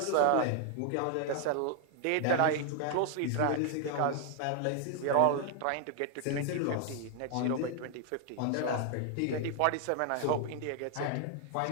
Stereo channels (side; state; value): both; different; correlation 0.00